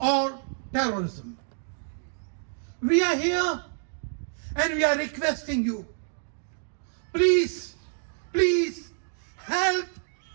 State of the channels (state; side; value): silent; left; 59 dB below the other